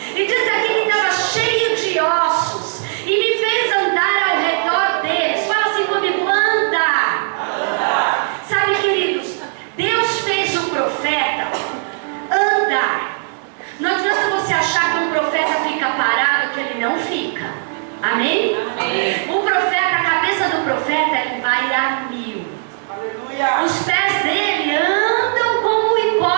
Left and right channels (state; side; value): silent; left; digital silence